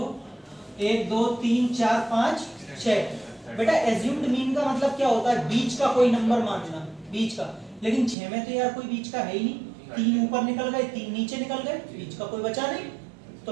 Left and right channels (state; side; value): drops out; left; at 8.2 s